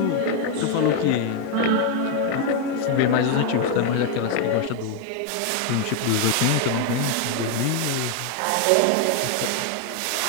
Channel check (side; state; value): both; different; correlation 0.01